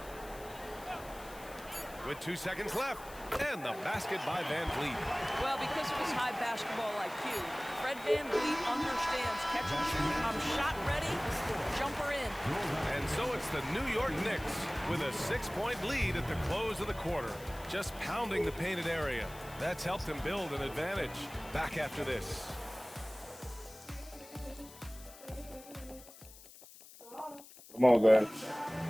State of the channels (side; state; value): left; noise; hiss, 19 dB below the sound